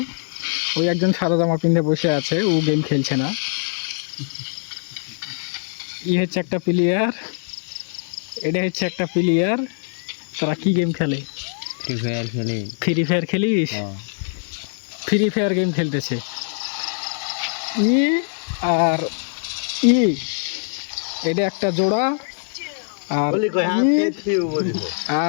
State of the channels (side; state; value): right; silent; digital silence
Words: ওই একজন সাদা জামা পিন্ধে বসে আছে, ও গেম খেলছে না। ই হচ্ছে একটা প্লেয়ার, এটা হচ্ছে একটা প্লেয়ার। তারা কি গেম খেলে? ফ্রি ফায়ার খেলে। ফ্রি ফায়ার খেলিস? ফ্রি ফায়ার গেম খেলতেছে। ই আর ই, এটা একটা জোড়া। আর